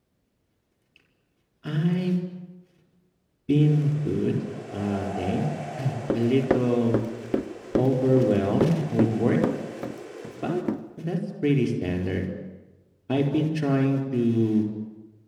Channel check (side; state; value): both; identical; correlation 1.00